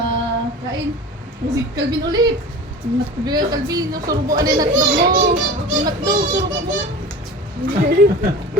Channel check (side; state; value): both; normal; correlation 0.36